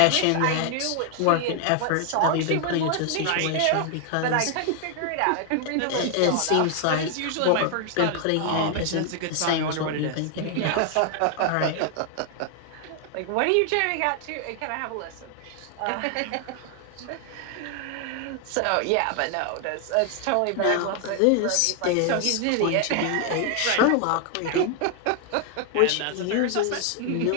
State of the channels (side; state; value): both; different; correlation 0.00